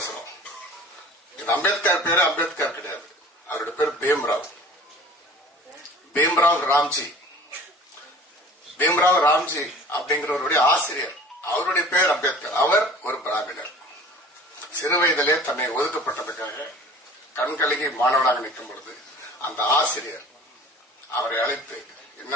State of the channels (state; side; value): normal; both; correlation 0.45